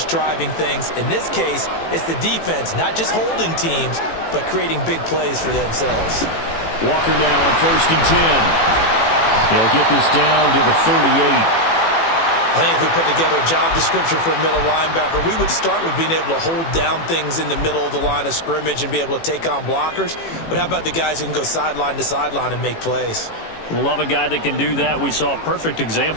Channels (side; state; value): right; late; 18 ms